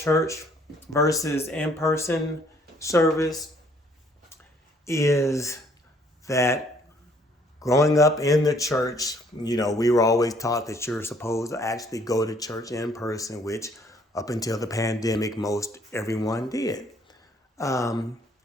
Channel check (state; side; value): normal; both; correlation 0.63